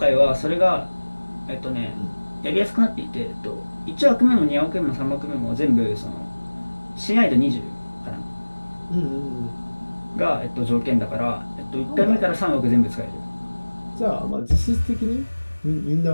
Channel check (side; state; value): both; inverted; correlation -1.00